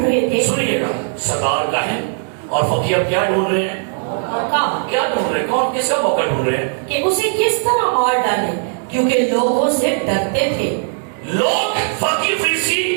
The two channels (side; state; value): left; silent; digital silence